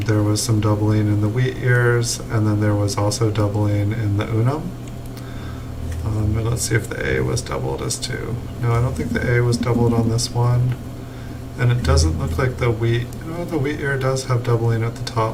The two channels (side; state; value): both; identical; correlation 1.00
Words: There was some doubling in the wheat ears, and then there was also doubling in the unum. And let's see if the A was doubled as 2. No, I don't think the A was doubled on this one. And it doesn't look like the wheat, the wheat ear does have doubling at the